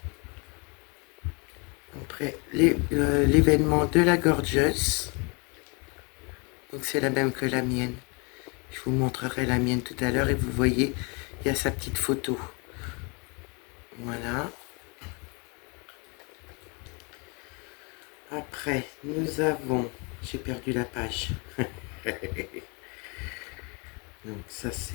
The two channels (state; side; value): quieter; right; 32.0 dB